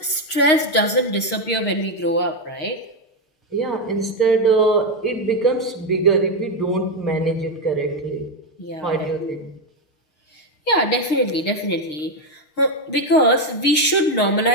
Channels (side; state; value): right; late; 6.5 ms